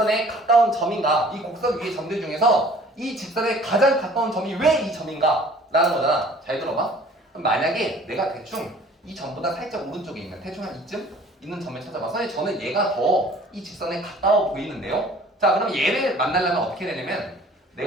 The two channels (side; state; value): both; normal; correlation 0.51